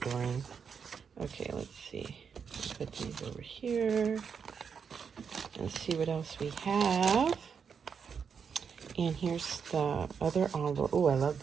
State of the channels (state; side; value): quieter; left; 6.5 dB